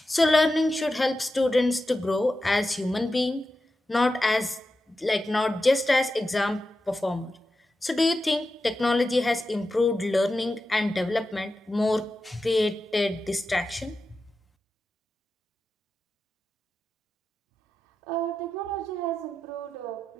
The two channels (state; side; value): normal; both; correlation 0.91